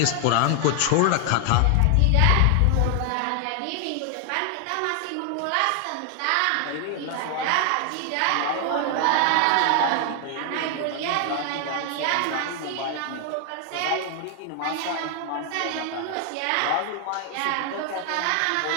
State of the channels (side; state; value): both; different; correlation 0.00